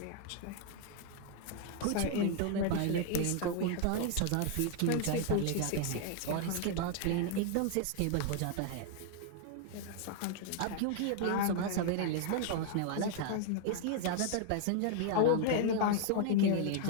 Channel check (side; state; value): both; different; correlation 0.00